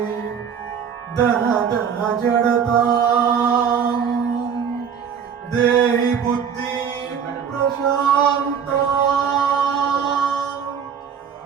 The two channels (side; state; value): left; quieter; 7.3 dB